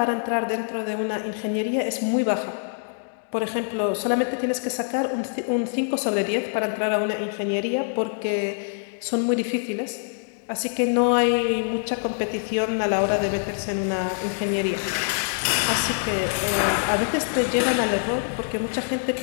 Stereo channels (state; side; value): silent; right; digital silence